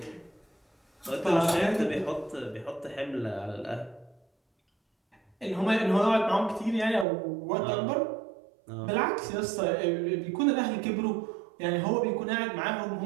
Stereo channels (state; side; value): drops out; left; at 7.1 s